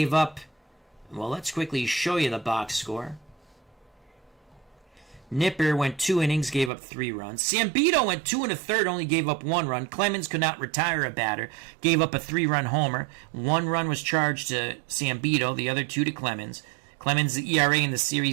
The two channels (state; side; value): drops out; left; at 6.7 s